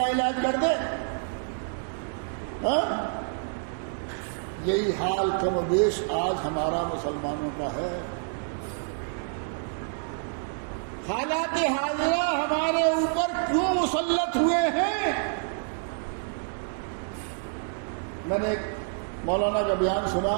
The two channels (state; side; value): silent; left; digital silence